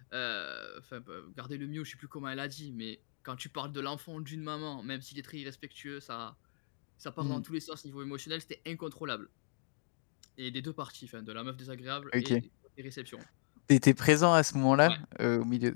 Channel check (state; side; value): silent; right; digital silence